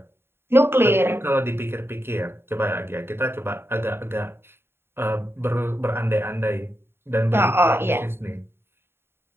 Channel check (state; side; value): late; left; 0.11 ms